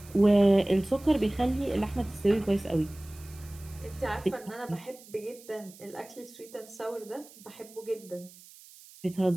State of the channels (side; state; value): right; noise; hiss, 21 dB below the sound